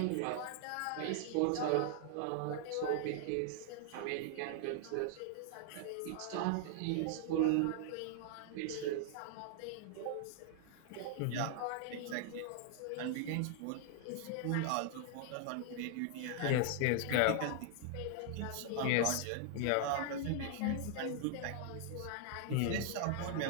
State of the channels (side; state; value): both; different; correlation 0.00